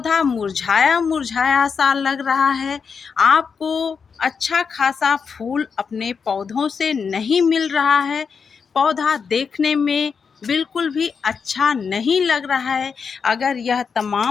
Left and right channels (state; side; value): quieter; right; 5.9 dB